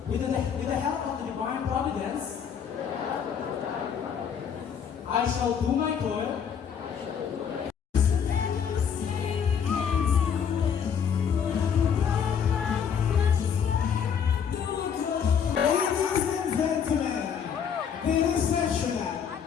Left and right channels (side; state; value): right; quieter; 7.4 dB